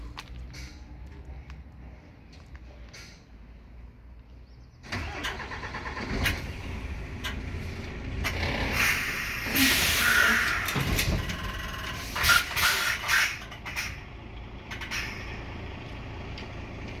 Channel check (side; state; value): both; identical; correlation 1.00